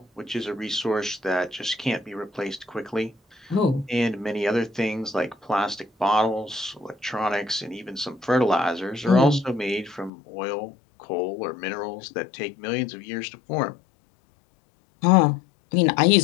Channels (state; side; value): drops out; right; at 10.1 s